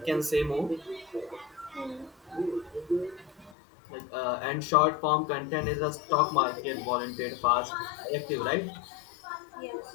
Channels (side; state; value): right; drops out; at 3.6 s